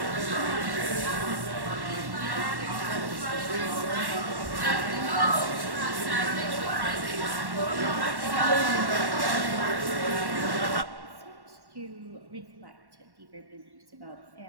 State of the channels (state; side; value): late; left; 1.1 ms